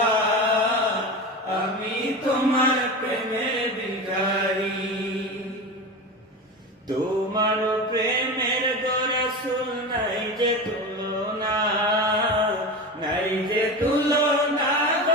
আমি তোমার প্রেমের ভিখারি। তোমার প্রেমের গো রাসূল নাই যে তুলনা, নাই যে তুলনা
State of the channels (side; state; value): both; normal; correlation 0.26